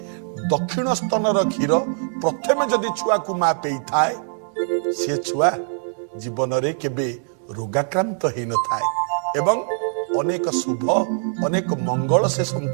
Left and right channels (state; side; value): silent; left; digital silence